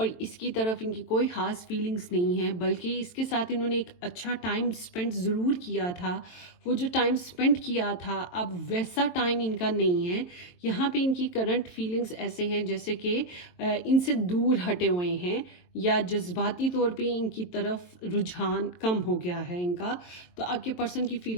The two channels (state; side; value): late; right; 23 ms